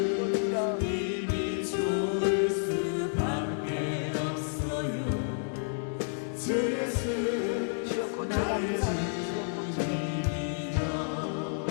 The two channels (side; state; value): right; silent; digital silence